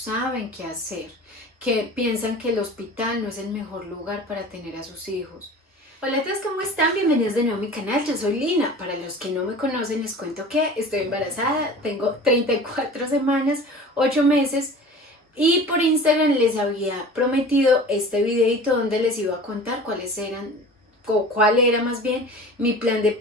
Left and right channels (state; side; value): normal; both; correlation 0.40